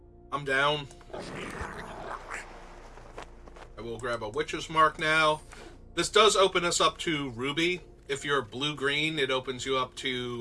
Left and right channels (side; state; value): both; identical; correlation 1.00